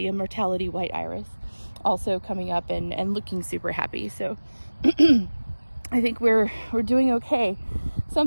immortality white iris, also coming up and looking super happy. So I think we're doing okay.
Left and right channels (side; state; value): both; inverted; correlation -1.00